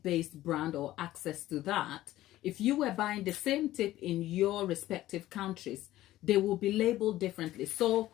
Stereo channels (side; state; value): right; quieter; 15.1 dB